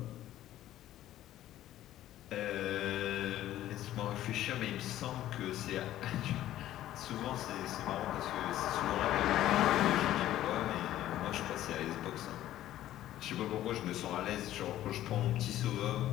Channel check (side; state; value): right; quieter; 13.4 dB